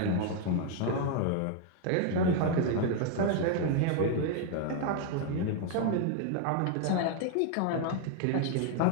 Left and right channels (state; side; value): different; both; correlation 0.01